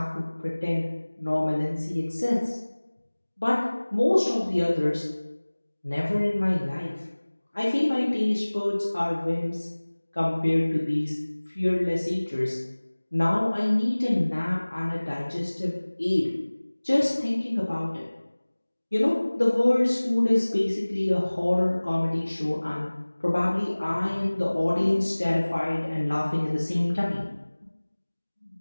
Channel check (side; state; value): both; inverted; correlation -1.00